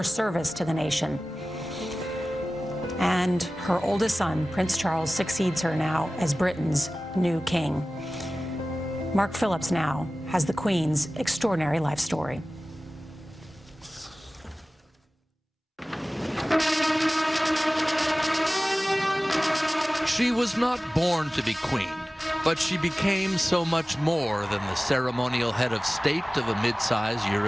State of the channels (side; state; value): both; normal; correlation 0.97